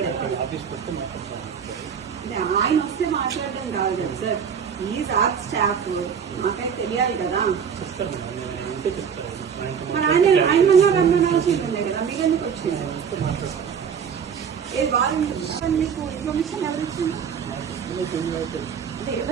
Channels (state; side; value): quieter; left; 7.1 dB